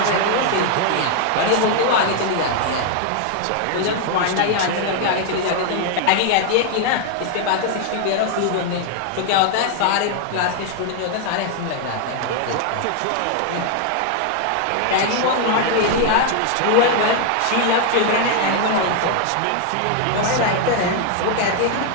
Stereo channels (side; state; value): both; different; correlation 0.00